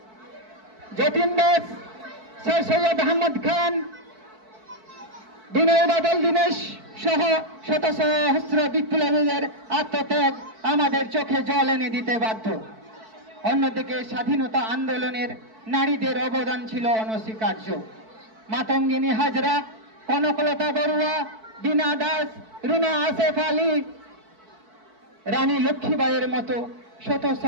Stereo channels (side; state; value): left; late; 4.6 ms